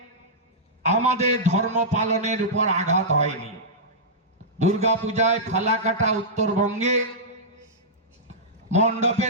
আমাদের ধর্ম পালনের উপর আঘাত হয়নি। দুর্গা পূজায় ফালাকাটা উত্তরবঙ্গে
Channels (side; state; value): both; normal; correlation -0.13